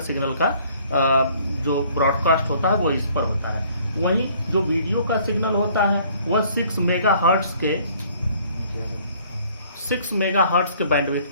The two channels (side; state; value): both; inverted; correlation -0.58